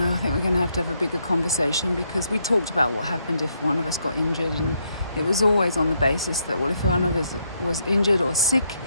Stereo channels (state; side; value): inverted; both; correlation -0.76